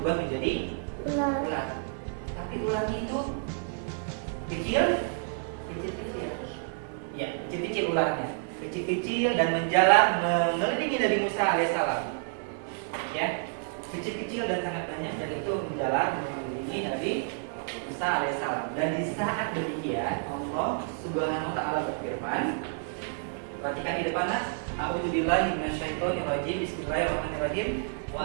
menjadi ular. Tapi ularnya itu kecil. Ya, kecil-kecil ularnya. Kecil-kecil dan menjalar mengelilingi Nabi Musa alaihissalam. Ya, kecil-kecil dan sangat banyak, dan itu menjalar mengelilingi Nabi Musa alaihissalam. Dan di saat demikian Allah Subhanahu wa taala berfirman, perhatikan di depan nas, "A'udzubillahi minasyaitonir rajim. Bismillahirrahmanirrahim.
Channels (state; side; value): silent; left; digital silence